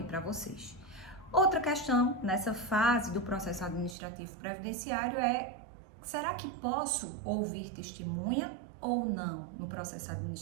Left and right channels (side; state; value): left; drops out; at 4.0 s